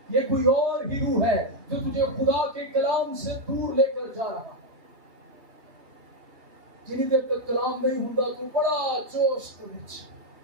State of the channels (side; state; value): left; late; 3.0 ms